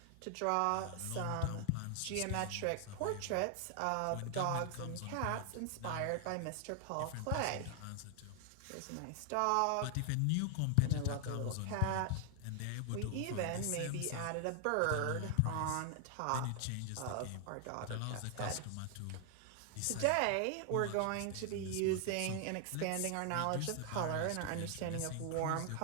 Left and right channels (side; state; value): both; different; correlation 0.00